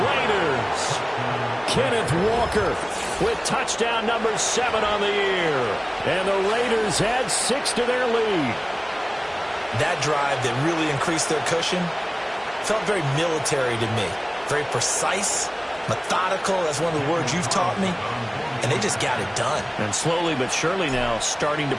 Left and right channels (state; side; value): identical; both; correlation 1.00